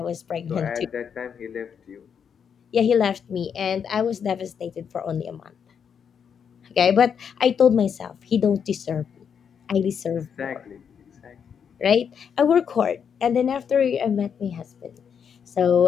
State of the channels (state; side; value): quieter; right; 7.3 dB